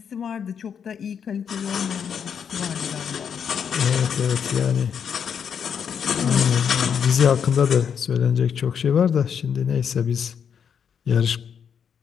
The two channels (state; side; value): quieter; right; 7.5 dB